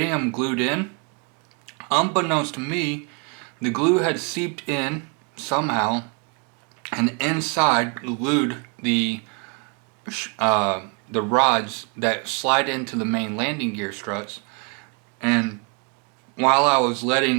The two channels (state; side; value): quieter; left; 35.0 dB